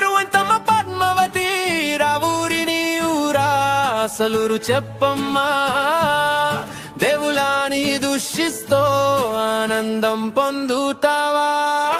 ఎంతమ్మ పద్మావతి రావూరిని ఊరా అసలురు చెప్పమ్మా దేవులాని దూషిస్తో ఆనందం పొందుతావా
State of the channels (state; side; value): identical; both; correlation 1.00